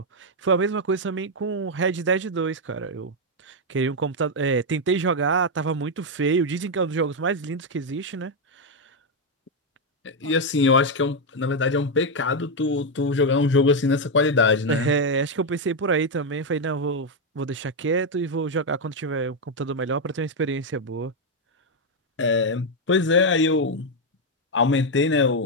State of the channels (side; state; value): both; normal; correlation 0.02